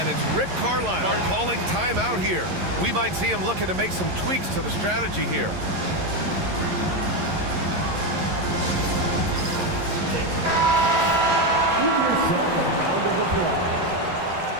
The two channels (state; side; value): late; left; 11 ms